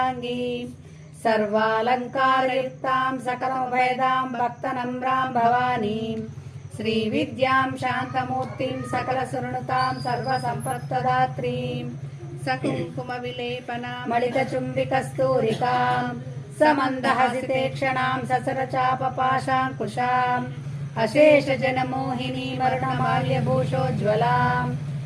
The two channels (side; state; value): both; identical; correlation 1.00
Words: सर्वालङ्कारयुक्तां सकलभेदां भक्तनम्रां भवानीं श्रीविद्यां शान्तमूर्तिं सकलसुरनुतां सर्वसम्पत्प्रदात्रीं सकुङ्कुमविलेपनां मणिकचुम्बिकस्तूरिकां समन्दहसितेक्षणां ससरचापपाशाङ्कुशाम् अशेषजनमोहिनीं वर्णमाल्यभूषोज्ज्वलां